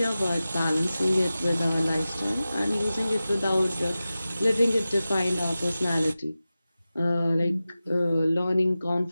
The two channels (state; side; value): inverted; both; correlation -0.95